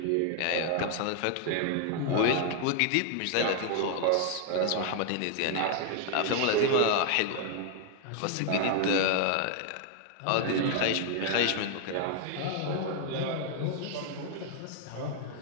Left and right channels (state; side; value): different; both; correlation 0.00